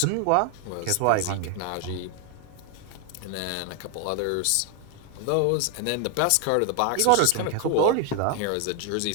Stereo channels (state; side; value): different; both; correlation 0.01